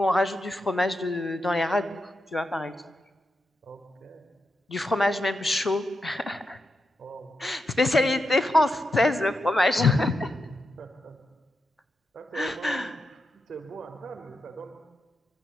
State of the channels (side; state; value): both; normal; correlation 0.87